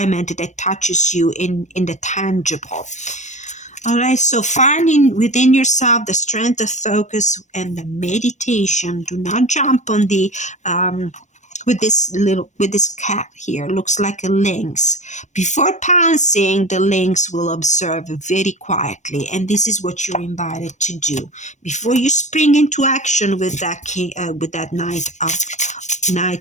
that touches you in the tangible. All right, so finding within yourself the strength of focus and the meditation. Do not jump on the with this cat here. Looks like a lynx. Before pouncing, the lynx will observe very quietly, and this is what you're invited to do before you spring into action with that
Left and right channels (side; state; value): right; late; 0.34 ms